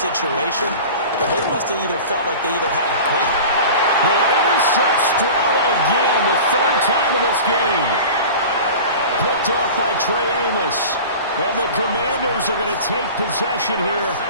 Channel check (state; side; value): inverted; both; correlation -0.36